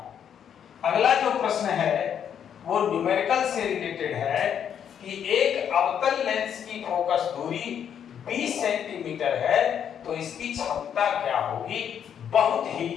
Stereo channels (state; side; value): quieter; right; 8.6 dB